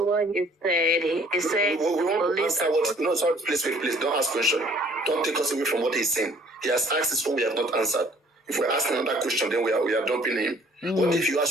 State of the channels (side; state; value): both; normal; correlation 0.57